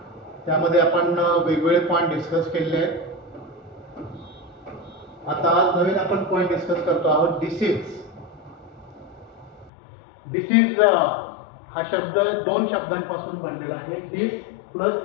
त्यामध्ये आपण वेगवेगळे पॉइंट डिस्कस केले आहेत. आता आज नवीन आपण पॉइंट डिस्कस करतो आहोत डिसीज. डिसीज हा शब्द दोन शब्दांपासून बनलेला आहे. डिस plus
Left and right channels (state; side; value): drops out; right; at 9.7 s